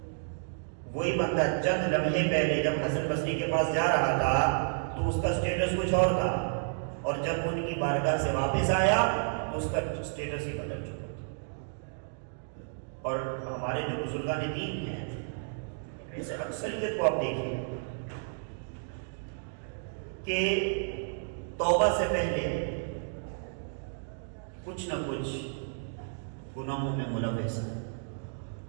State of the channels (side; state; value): left; silent; digital silence